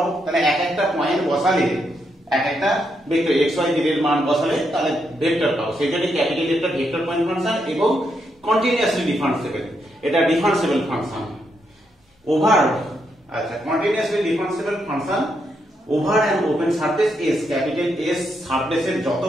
তাহলে এক একটা পয়েন্ট বসালে এক একটা ভেক্টর এক্স ওয়াই জেড এর মান বসালে তাহলে ভেক্টর পাবো। সেজন্য ক্যাপিটাল একটা ভেক্টর পয়েন্ট ফাংশন এবং কন্টিনিউয়াসলি ডিফারেন্সিয়েবল, এটা ডিফারেন্সিয়েবল ফাংশন ওভার, আচ্ছা continuously differentiable function over an open surface S. Capital S সারফেসের যত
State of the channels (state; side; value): normal; both; correlation 0.80